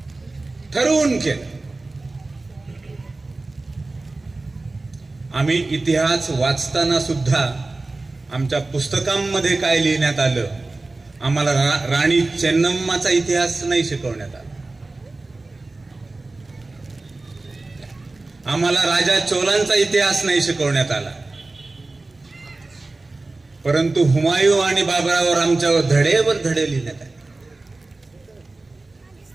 ठरवून केलं. आम्ही इतिहास वाचताना सुद्धा आमच्या पुस्तकांमध्ये काय लिहिण्यात आलं, आम्हाला राणी चेन्नम्माचा इतिहास नाही शिकवण्यात आला. आम्हाला राजा चोलांचा इतिहास नाही शिकवण्यात आला. परंतु हुमायूं आणि बाबरावर आमच्यावर धडेवर धडे लिहिण्यात आले.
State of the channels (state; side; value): quieter; left; 3.3 dB